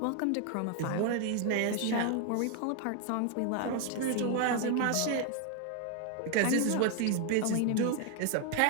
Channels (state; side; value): different; both; correlation 0.00